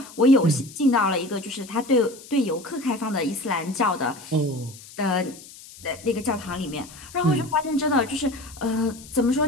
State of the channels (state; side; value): noise; left; hiss, 18 dB below the sound